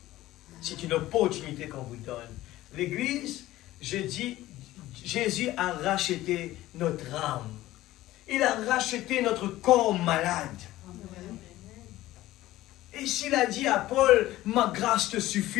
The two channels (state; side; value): quieter; right; 16.0 dB